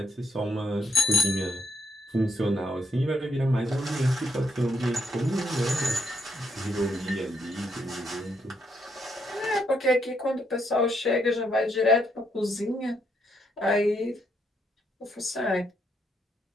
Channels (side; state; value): both; normal; correlation 0.76